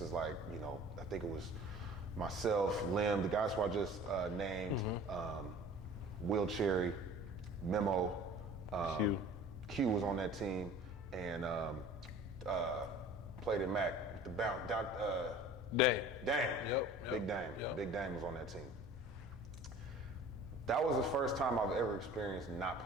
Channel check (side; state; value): both; normal; correlation 0.45